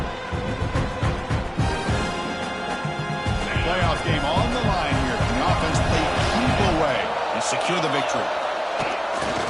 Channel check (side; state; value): both; identical; correlation 1.00